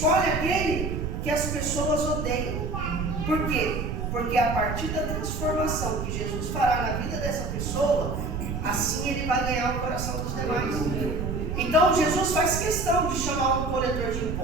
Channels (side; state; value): right; noise; rumble, 3 dB below the sound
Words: aquele que as pessoas odeiam. Por quê? Porque a partir da transformação que Jesus fará na vida dessa pessoa, assim ele vai ganhar o coração dos demais. Então Jesus faz questão de chamar um coletor de